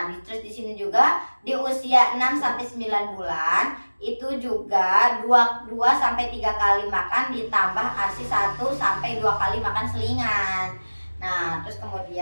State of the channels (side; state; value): both; inverted; correlation -1.00